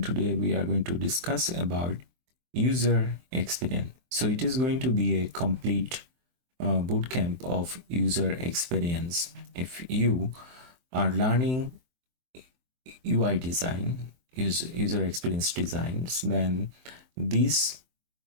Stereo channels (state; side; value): late; left; 23 ms